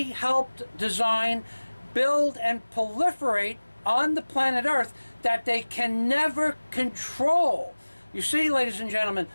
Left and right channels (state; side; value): inverted; both; correlation -1.00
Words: helped design, build, and proliferate on the planet Earth that they can never control. You see, ladies and gentlemen,